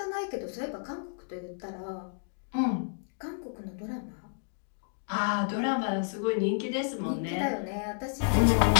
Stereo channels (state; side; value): silent; right; digital silence